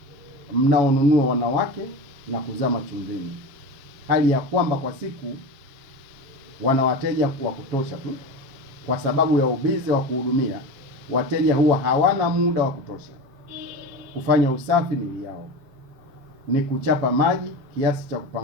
mnaonunua wanawake na kuzama chumvini, hali ya kwamba kwa siku wana wateja wa kutosha tu. Kwa sababu ya ubizi wa kuhudumia wateja, huwa hawana muda wa kutosha kufanya usafi mili yao. Ni kuchapa maji kiasi cha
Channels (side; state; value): left; late; 7.4 ms